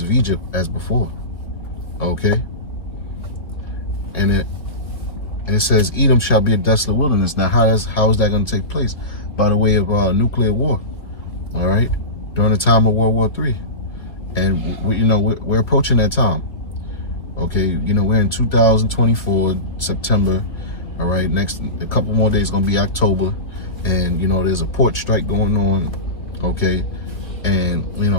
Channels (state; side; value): late; right; 2.4 ms